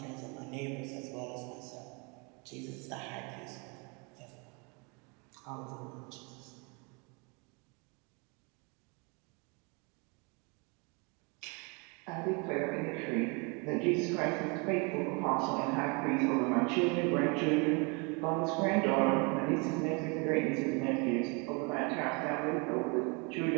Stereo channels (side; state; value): left; quieter; 31.6 dB